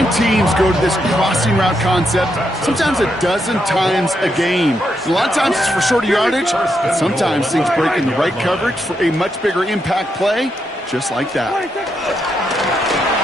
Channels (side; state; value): both; normal; correlation 0.81